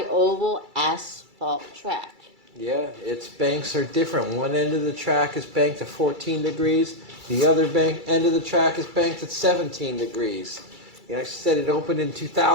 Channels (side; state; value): left; late; 2.3 ms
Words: asphalt track. Yeah, its banks are different. One end of the track is banked at 14 degrees. The other end of the track is banked at 17 degrees. You know, I said it opened in